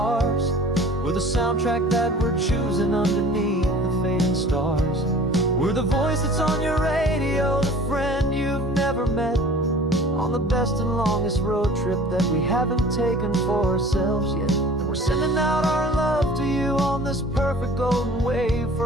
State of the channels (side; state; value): both; normal; correlation 0.46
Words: with a soundtrack that we're choosing underneath the fading stars. We're the voice that's on your radio, the friend you've never met, on the best and longest road trip that we haven't taken for ourselves yet. And we're sending out our love to you on this perfect golden wave,